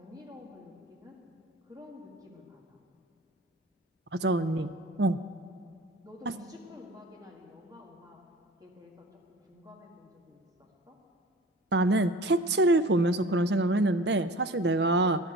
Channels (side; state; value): both; normal; correlation 0.41